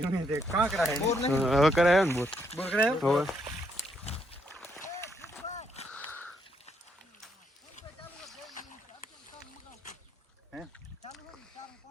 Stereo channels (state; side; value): normal; both; correlation 0.75